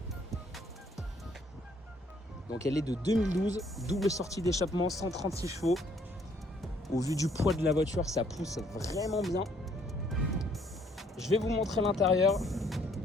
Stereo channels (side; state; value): both; normal; correlation 0.65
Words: Donc elle est de 2012, double sortie d'échappement, 136 chevaux. Au vu du poids de la voiture, ça pousse vraiment bien. Je vais vous montrer l'intérieur.